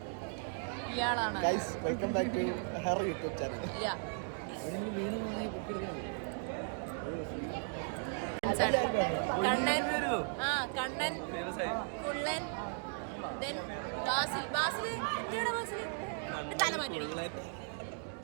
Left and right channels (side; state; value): left; silent; 53 dB below the other